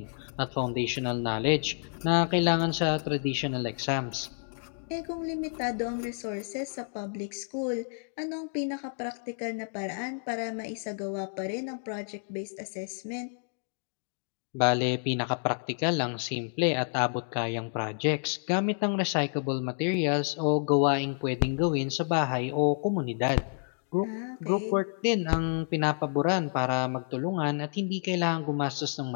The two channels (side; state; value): right; silent; digital silence